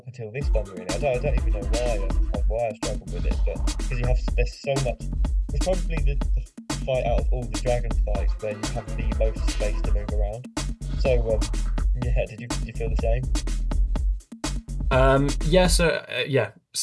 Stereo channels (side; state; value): both; identical; correlation 1.00